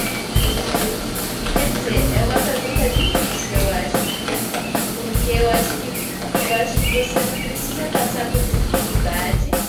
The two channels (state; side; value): identical; both; correlation 1.00